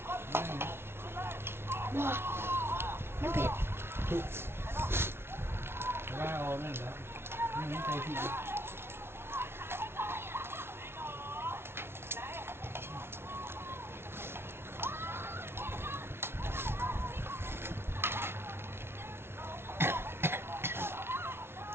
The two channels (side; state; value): left; late; 0.12 ms